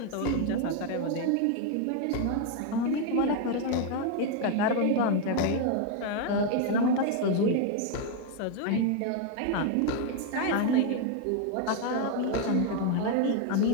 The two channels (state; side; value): different; both; correlation 0.01